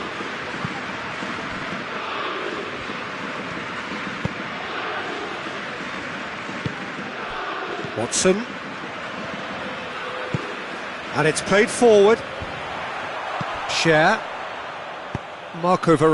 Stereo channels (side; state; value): both; identical; correlation 1.00